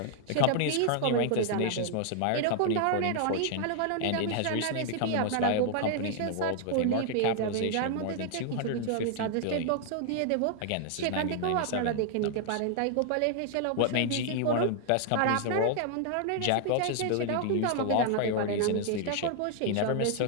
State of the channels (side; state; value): both; different; correlation 0.00